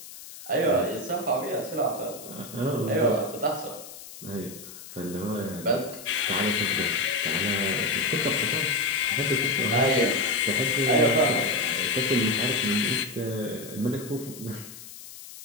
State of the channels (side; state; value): left; noise; hiss, 15 dB below the sound